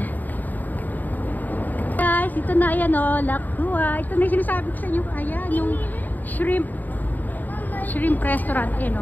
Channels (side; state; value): right; late; 0.085 ms